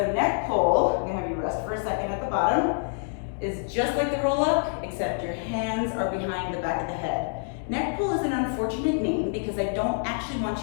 neck pull, I'm gonna have you rest for a second at the bottom, is just like the roll up, except your hands are behind the back of the head. Neck pull is an unfortunate name because I don't actually want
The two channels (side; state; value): right; silent; digital silence